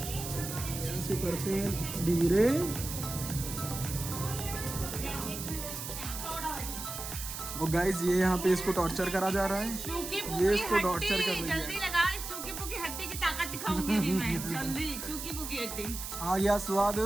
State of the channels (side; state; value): right; noise; hiss, 7 dB below the sound